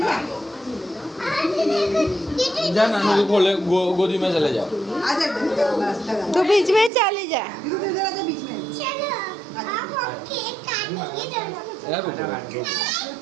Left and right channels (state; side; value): drops out; left; at 6.9 s